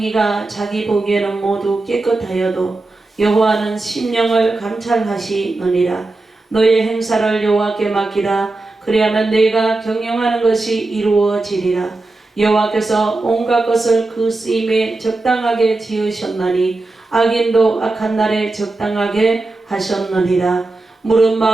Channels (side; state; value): left; quieter; 3.2 dB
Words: 자기 보기에는 모두 깨끗하여도 여호와는 심령을 감찰하시느니라. 너의 행사를 여호와께 맡기라. 그리하면 내가 경영하는 것이 이루어지리라. 여호와께서 온갖 것을 그 쓰임에 적당하게 지으셨나니 악인도 악한 날에 적당하게 하셨느니라. 무릇